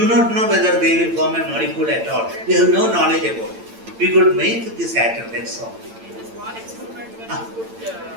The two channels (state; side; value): late; left; 8.9 ms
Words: not know whether they will form a molecule at all. We have no knowledge about it. We could make this atom, that's all. In this one experiment, when you put